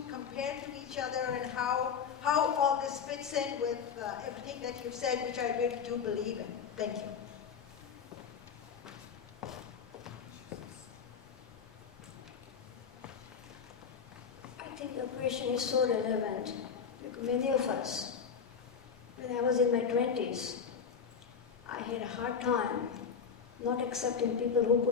compare to each other and how all this fits in with everything that you've said, which I really do believe in. Thank you. I think your question is so relevant because many of us, when I was in my 20s, I had a hard time not accepting people who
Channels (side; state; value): right; quieter; 6.5 dB